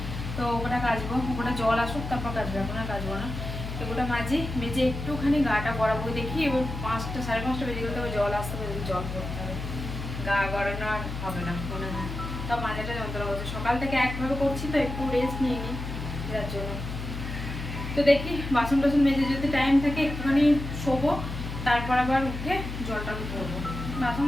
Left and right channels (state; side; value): noise; left; hum, 7 dB below the sound